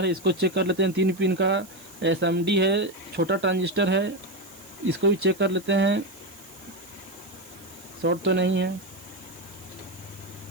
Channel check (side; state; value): right; noise; hiss, 21 dB below the sound